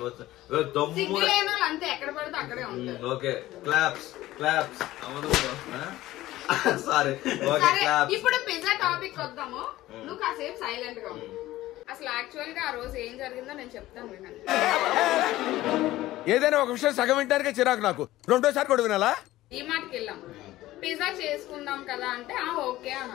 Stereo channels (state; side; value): quieter; right; 16.1 dB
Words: వచ్చింది. ఓకే క్లాప్స్ క్లాప్స్ అవదు. Sorry okay claps. ఇప్పుడు పిజ్జా టాపిక్ వద్దాము. నువ్వు కాసేపు సైలెంట్ గా ఉంది. అసలు యాక్చువల్ గా ఆ రోజు ఏం జరిగిందో నేను చెప్తాను వినండి. ఏదైనా ఒక విషయం సగం వింటానికే చిరాకు నాకు, రెండోసారి కూడా వినాలా? ఈ మాటకి వెళ్ళాం, పిజ్జా చేసుకుందాం కదా అంటే ఓకే